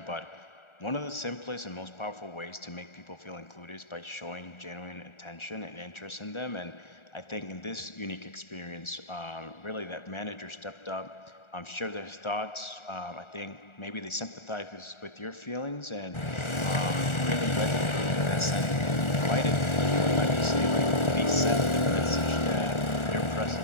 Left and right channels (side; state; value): right; late; 1.4 ms